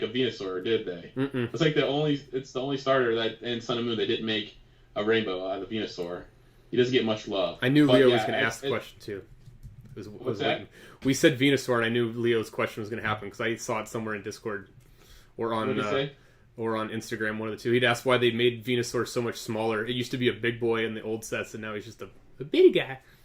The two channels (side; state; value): both; identical; correlation 1.00